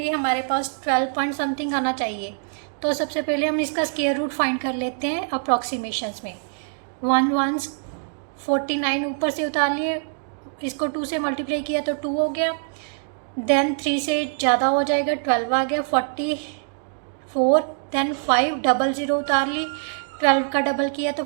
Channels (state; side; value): silent; left; digital silence